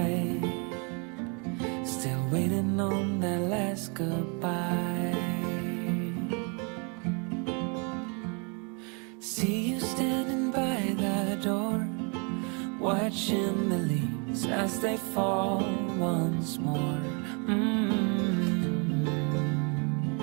still waiting on that last goodbye. See you standing by the door, watching the leaves as they fall once more.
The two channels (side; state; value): left; quieter; 35.0 dB